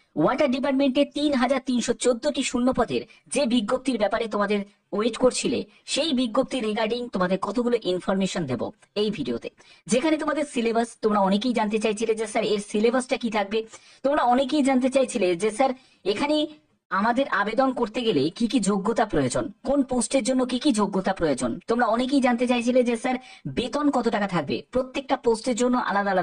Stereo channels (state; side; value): identical; both; correlation 1.00